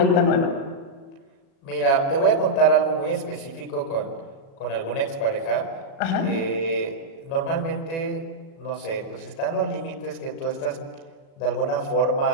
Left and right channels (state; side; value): late; right; 36 ms